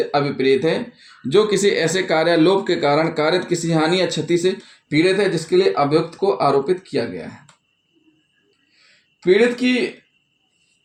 अभिप्रेत है जो किसी ऐसे कार्यालोप के कारण कारित किसी हानि या क्षति से पीड़ित है जिसके लिए अभियुक्त को आरोपित किया गया है। पीड़ित की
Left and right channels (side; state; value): both; identical; correlation 1.00